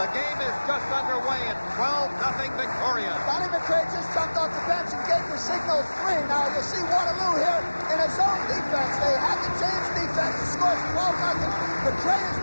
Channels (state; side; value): inverted; both; correlation -1.00